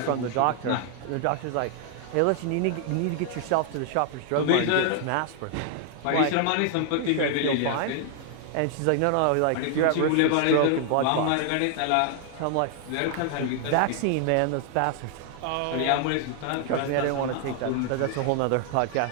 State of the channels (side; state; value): both; different; correlation 0.00